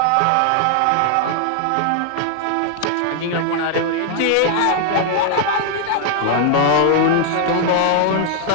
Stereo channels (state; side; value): different; both; correlation 0.00